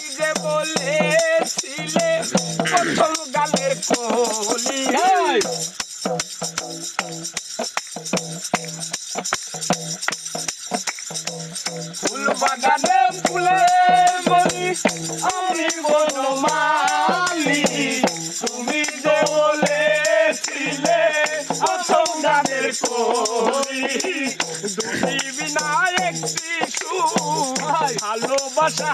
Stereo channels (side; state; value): both; identical; correlation 1.00